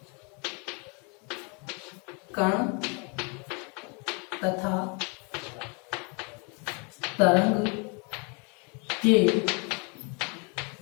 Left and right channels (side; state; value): right; quieter; 33.7 dB